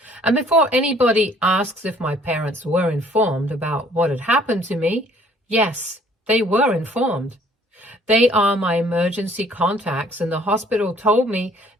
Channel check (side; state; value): both; normal; correlation 0.58